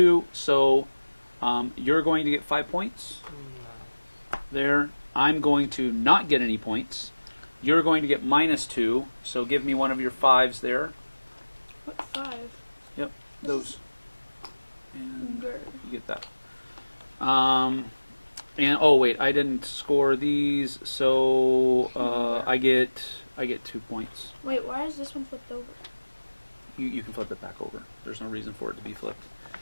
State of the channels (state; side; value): inverted; both; correlation -1.00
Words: So you're going to get 5 points there. I'm going to not get any points. You're going to get -2. So give me one of your 5s there. What 5? Yep, those. And Grr. you get that. And oh wait, I didn't score these, so I get 2 points. Wait, why is this one flipped over? You can flip it back over. There's no reason for it to be flipped.